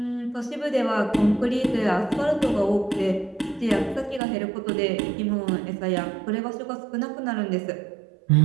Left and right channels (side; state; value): left; drops out; at 4.2 s